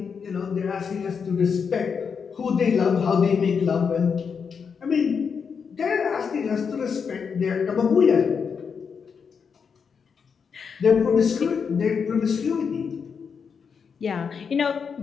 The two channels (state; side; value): quieter; right; 6.2 dB